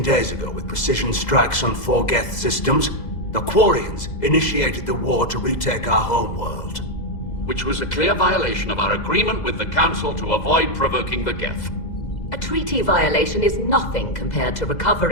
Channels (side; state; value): right; late; 2.0 ms